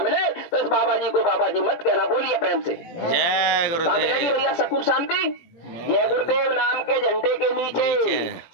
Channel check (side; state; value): right; late; 18 ms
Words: मिले तो इस बाबा जी को बाबा जी मत कहना। बोलिए प्रेम से जय गुरुदेव। भैया सुकून शांति जय गुरुदेव नाम के झंडे के नीचे